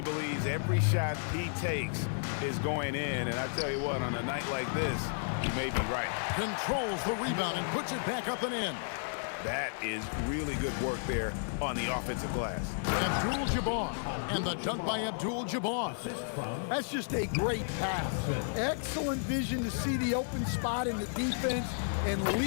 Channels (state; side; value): silent; right; 56 dB below the other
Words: believes every shot he takes is going in, and I tell you what, on a night like this, he may be right. Controls the rebound and puts it back up and in. That is really good work there on the offensive glass. Abdul-Jabbar, and the dunk by Abdul-Jabbar. That's just a great pass. Excellent vision to see the open spot in the defense and